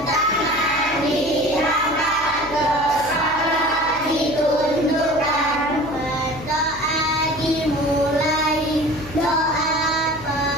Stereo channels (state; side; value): noise; left; hum, 18 dB below the sound